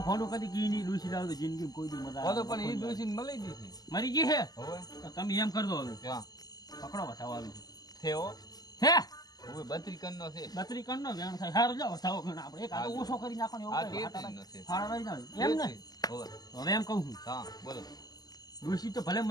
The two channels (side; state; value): right; late; 0.19 ms